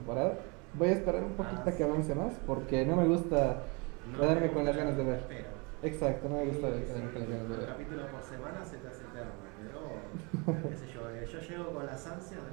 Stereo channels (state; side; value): quieter; left; 30.4 dB